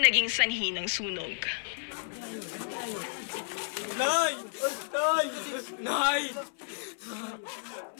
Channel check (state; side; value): silent; right; 57 dB below the other